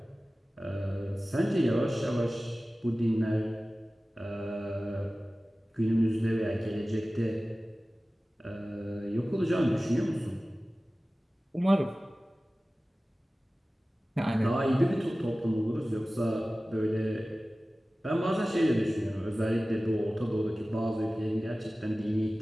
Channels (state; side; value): normal; both; correlation 0.97